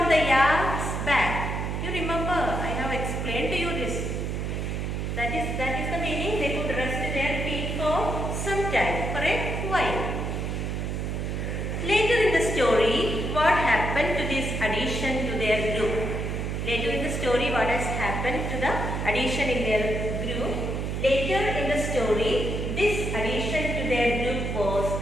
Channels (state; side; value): noise; right; hum, 2 dB below the sound